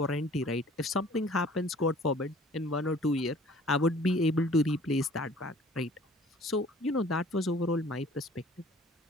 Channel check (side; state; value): both; normal; correlation 0.52